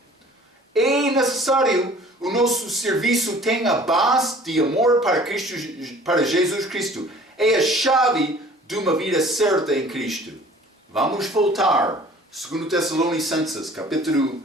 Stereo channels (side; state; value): both; normal; correlation 0.50